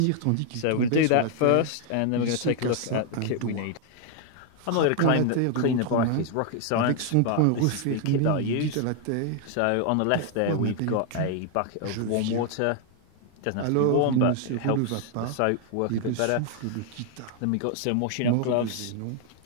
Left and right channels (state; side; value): different; both; correlation 0.00